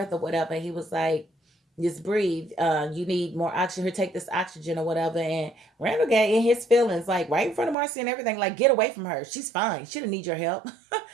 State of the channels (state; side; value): drops out; left; at 7.8 s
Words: or whatever. He was like, just breathe. You need more oxygen. Here, take this oxygen or whatever. And Randall got in his feelings, like right in front of Marcie and everything. Like, get away from her. She's fine. She don't need your help.